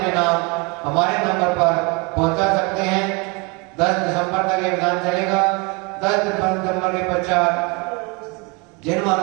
नाम हमारे नंबर पर पहुंचा सकते हैं। 10 दिसंबर तक ये विधान चलेगा। 10 दिसंबर के पश्चात जिन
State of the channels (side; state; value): left; quieter; 29.6 dB